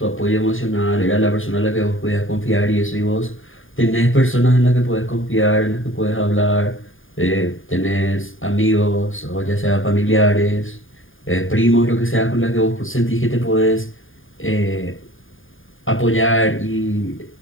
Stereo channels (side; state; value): right; late; 0.59 ms